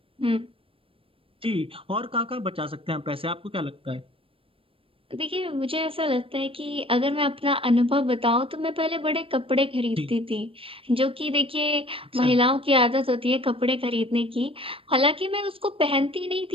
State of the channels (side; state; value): left; late; 0.26 ms